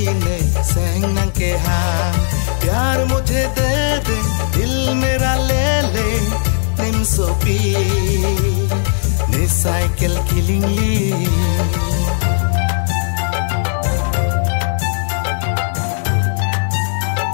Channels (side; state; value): right; silent; digital silence